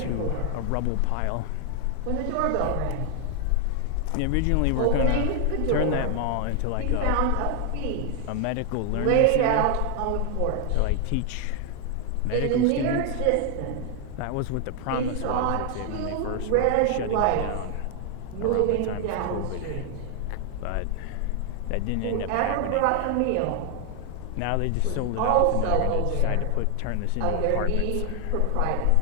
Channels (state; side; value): different; both; correlation 0.00